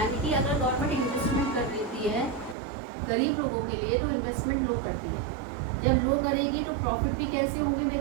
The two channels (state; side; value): drops out; left; at 2.6 s